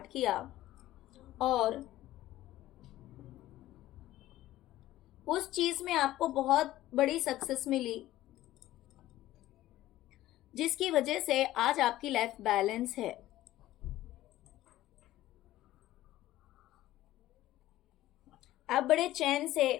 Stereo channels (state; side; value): quieter; right; 15.2 dB